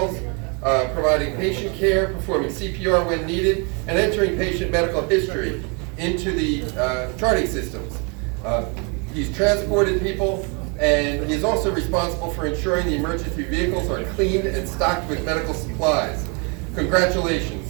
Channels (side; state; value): left; quieter; 33.6 dB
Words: providing patient care, performing CPR when needed, and entering patient medical history into the charting systems. He's transported people, and he is also responsible for ensuring the emergency vehicles are cleaned and stocked with medical supplies.